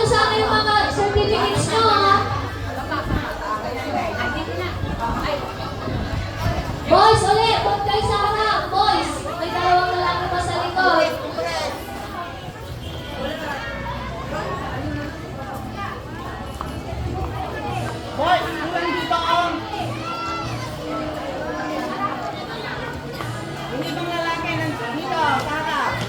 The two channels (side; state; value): both; identical; correlation 1.00